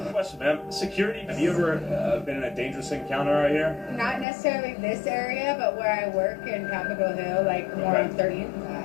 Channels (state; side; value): drops out; right; at 4.2 s